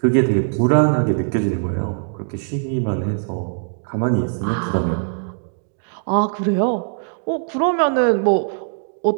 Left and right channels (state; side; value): silent; left; digital silence